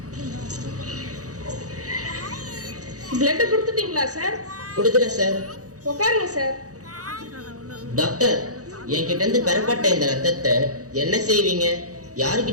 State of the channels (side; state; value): left; late; 0.66 ms